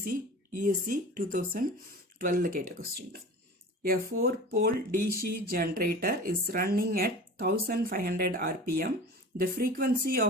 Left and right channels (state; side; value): normal; both; correlation 0.37